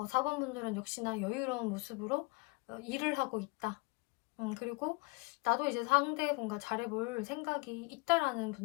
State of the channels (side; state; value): right; quieter; 27.5 dB